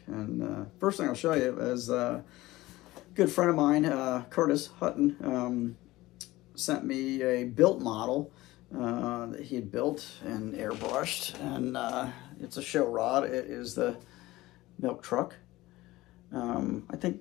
And first thing I'll show you is a good friend of mine, Curtis Hutton, sent me a built model that he had built and airbrushed, and it's a show rod. It is the milk truck. I think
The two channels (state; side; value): quieter; right; 18.3 dB